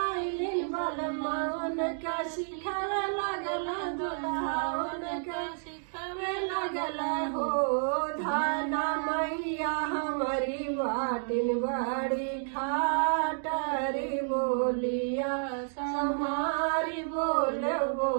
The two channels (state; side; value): silent; left; digital silence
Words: आइलिन बलमान का सिखावे लगल दुल्हावन का सिखावे लगल हो धान मैया हमारी बाटिन बड़ी खाटरी बोलिया समारी बोले